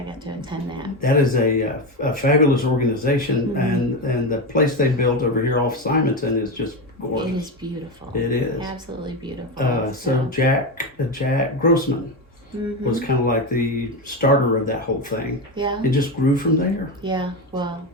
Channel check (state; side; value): normal; both; correlation 0.15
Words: got to attend that. That is a fabulous organization, and the place they built over here off Simonton is just gorgeous. It is beautiful. It is. Absolutely beautiful. So Jack Grossman was kind of like the starter of that whole thing. Yeah. It just grew from there. Yeah. Well,